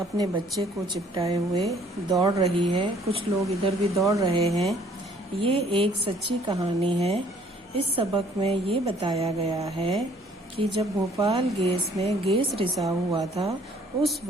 बच्चे को चिपटाए हुए दौड़ रही है। कुछ लोग इधर भी दौड़ रहे हैं। ये एक सच्ची कहानी है। इस सबक में ये बताया गया है कि जब भोपाल गैस में गैस रिसाव हुआ था उस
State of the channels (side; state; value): both; normal; correlation 0.59